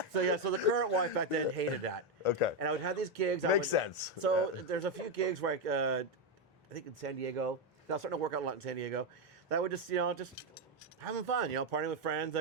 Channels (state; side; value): normal; both; correlation 0.06